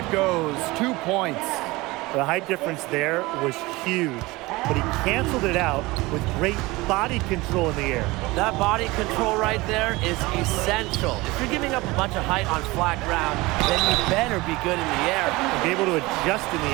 goes. 2 points. The height difference there was huge, but he canceled it out with great body control in the air. That body control right there is essential. If you're giving up a bunch of height on flat ground, then you better be good in the air. And be able to adjust in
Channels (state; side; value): quieter; left; 21.7 dB